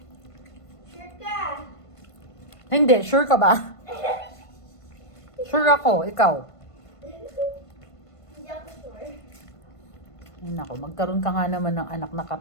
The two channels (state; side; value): late; right; 1.5 ms